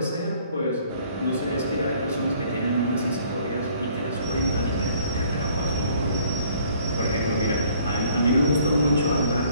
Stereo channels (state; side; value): inverted; both; correlation -0.59